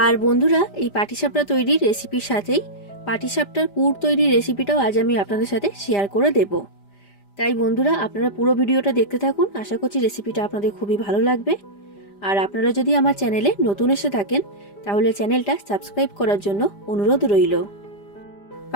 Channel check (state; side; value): late; right; 5.0 ms